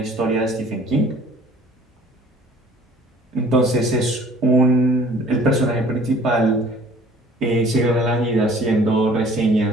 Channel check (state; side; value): normal; both; correlation 0.52